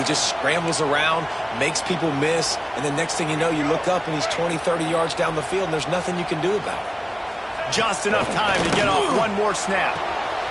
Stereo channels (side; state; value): both; identical; correlation 1.00